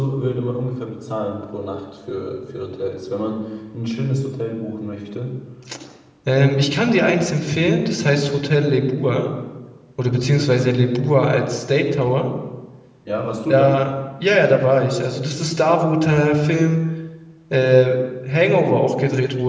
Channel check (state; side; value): identical; both; correlation 1.00